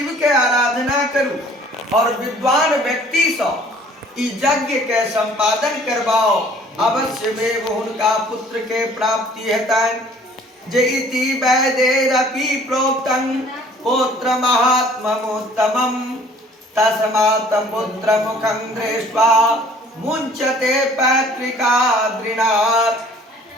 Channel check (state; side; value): normal; both; correlation 0.54